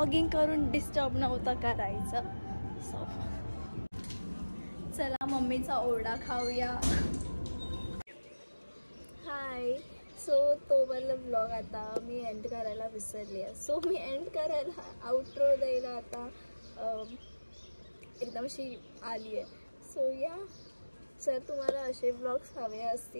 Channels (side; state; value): both; inverted; correlation -1.00